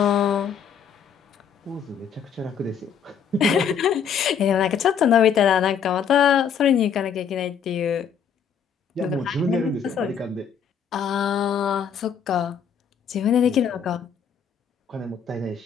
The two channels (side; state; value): right; quieter; 7.3 dB